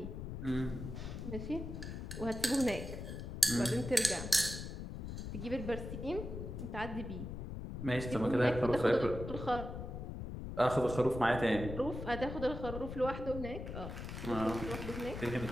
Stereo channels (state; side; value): noise; left; rumble, 7 dB below the sound